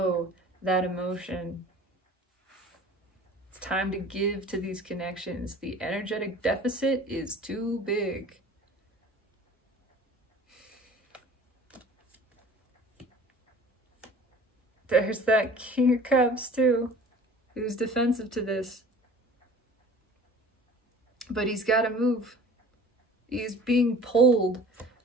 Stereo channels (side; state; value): both; normal; correlation 0.45